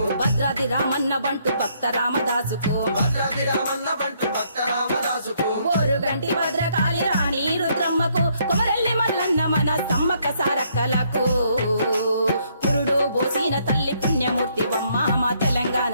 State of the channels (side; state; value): both; inverted; correlation -0.70